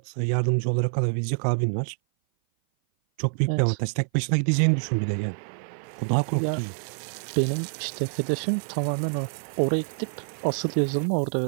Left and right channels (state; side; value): silent; left; 56 dB below the other